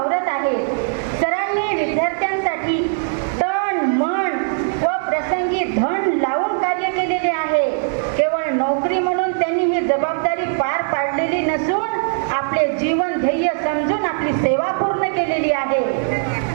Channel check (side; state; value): left; silent; digital silence